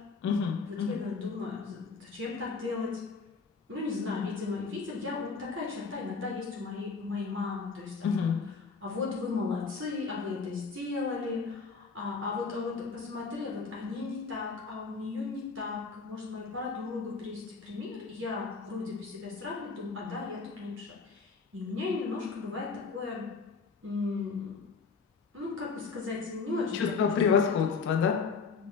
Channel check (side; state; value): right; quieter; 4.9 dB